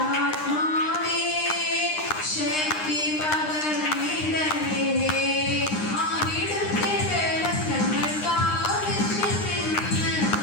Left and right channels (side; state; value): right; late; 9.8 ms